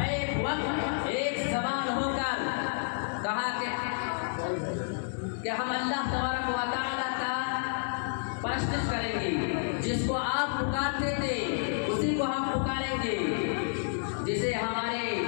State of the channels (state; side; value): silent; right; digital silence